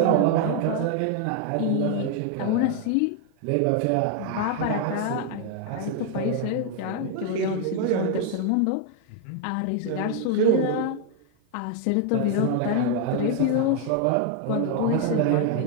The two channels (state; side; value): different; both; correlation 0.00